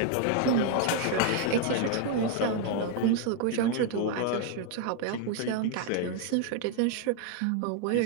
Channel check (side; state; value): both; different; correlation 0.01